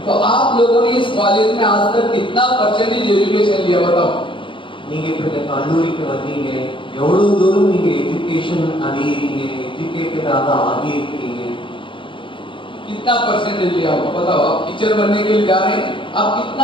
तो आप लोगों ने इस कॉलेज में आज तक कितना परसेंटेज एजुकेशन लिया बताओ? நீங்க இப்ப இந்த கல்லூரிக்கு வந்தீங்க, எவ்வளவு தூரம் நீங்க எஜுகேஷன் அடையறீங்க, எஜுகேட்டடாக ஆகி இருக்கீங்க? कितना परसेंटेज लिया होगा बताओ? आप टीचर बनने के लिए जा रहे हैं, आप कितना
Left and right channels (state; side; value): late; right; 0.24 ms